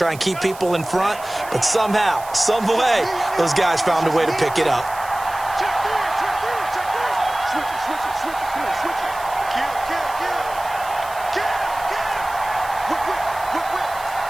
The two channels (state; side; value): noise; right; hiss, 17 dB below the sound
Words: and keep people in front, but somehow, some way, those guys found a way to pick it up.